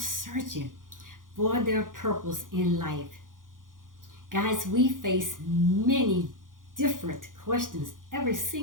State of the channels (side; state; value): left; late; 0.89 ms